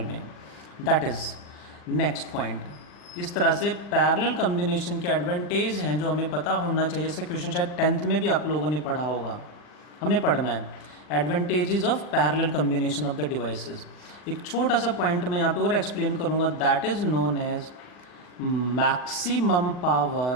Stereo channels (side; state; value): right; late; 40 ms